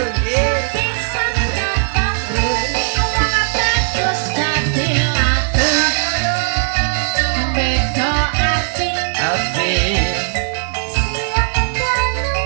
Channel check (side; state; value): left; silent; 65 dB below the other